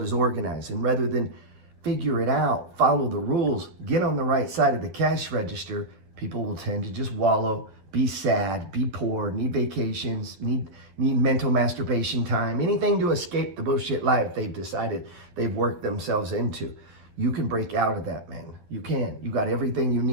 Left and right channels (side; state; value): left; late; 11 ms